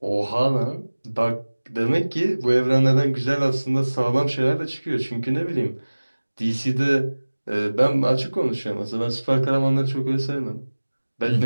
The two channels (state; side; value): inverted; both; correlation -1.00